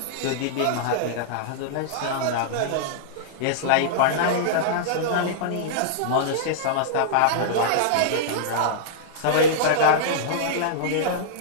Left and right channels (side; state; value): both; different; correlation -0.02